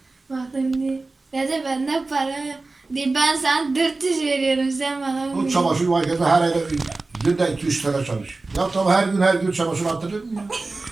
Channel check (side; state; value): left; quieter; 3.5 dB